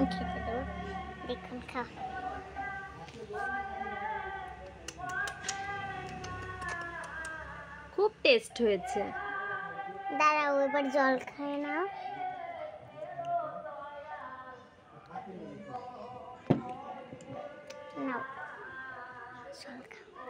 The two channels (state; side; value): identical; both; correlation 1.00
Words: খেতে দেবো। দেখুন খাও। খুব টেস্ট হয়েছে। দাঁড়াও এবার জল খায় নাও। নাও জল খাও।